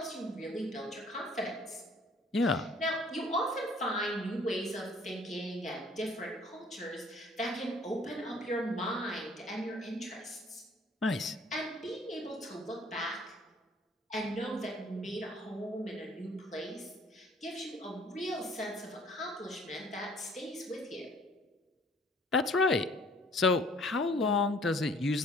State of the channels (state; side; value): normal; both; correlation 0.56